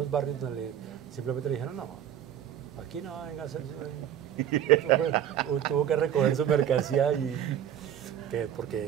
barrios donde simplemente le dijeron, no, aquí no venga a hacer tuvo que recoger su mercancía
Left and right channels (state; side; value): quieter; left; 10.0 dB